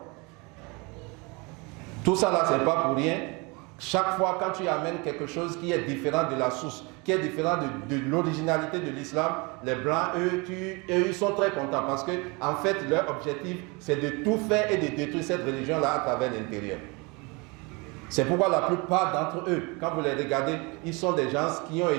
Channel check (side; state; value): left; quieter; 28.2 dB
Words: Tout ça, là, c'est pas pour rien. Chaque fois, quand tu amènes quelque chose qui est différent de la source, qui est différent de l'originalité de l'islam, les Blancs, eux, ils sont très contents parce que, en fait, leur objectif, c'est de tout faire et de détruire cette religion-là à travers l'intérieur. C'est pourquoi la plupart d'entre eux, quand vous les regardez, ils sont des gens qui ont